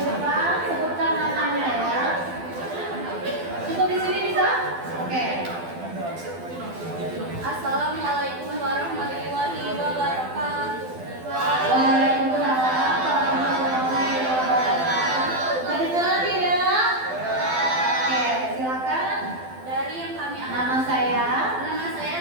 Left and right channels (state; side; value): late; left; 12 ms